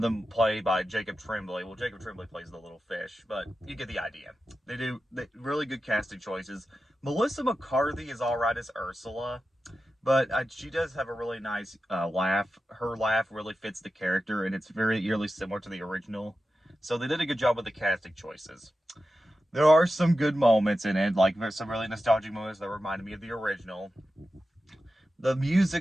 them played by Jacob Tremblay. Well, Jacob Tremblay plays the little fish, but you get the idea. They really good casting choices. Melissa McCarthy is all right as Ursula, but she does have a really nice laugh. Her laugh really fits the character, and it's very eerily similar to the original. So they did a good job with the casting choices. There are some good moments in it, like some really nostalgic moments that reminded me of the original. The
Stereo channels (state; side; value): normal; both; correlation 0.92